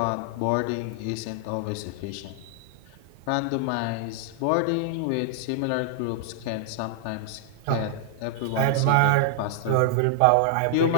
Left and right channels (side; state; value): both; different; correlation -0.01